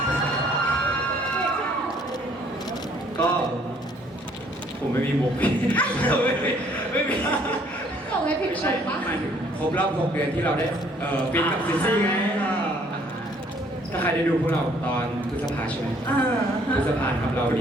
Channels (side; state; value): both; normal; correlation 0.62